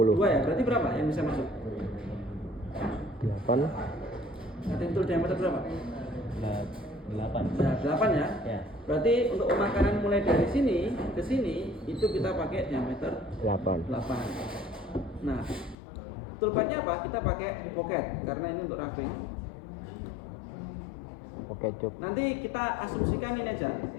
ya. Berarti berapa yang bisa masuk? 8. Cutting tool diameter berapa? 8. Nah, 8 ya. Ya. Berarti untuk pemakanan mulai dari sini ke sini itu kita pakai diameter 8. 8. Nah, toolpadnya apa? Kita pakai pocket karena ini untuk roughing. Oke, cuk. Nanti kita asumsikan ini aja,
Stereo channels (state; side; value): drops out; right; at 15.8 s